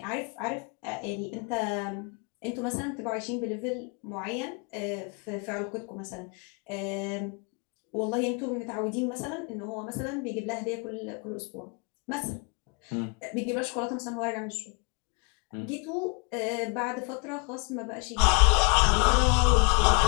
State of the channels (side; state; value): right; quieter; 34.4 dB